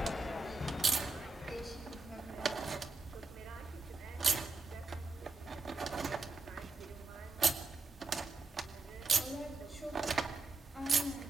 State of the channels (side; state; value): left; quieter; 3.7 dB